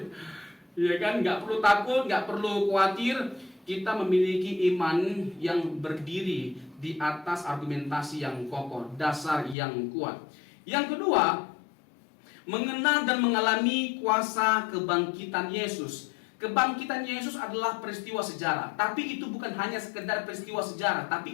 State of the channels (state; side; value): drops out; right; at 9.6 s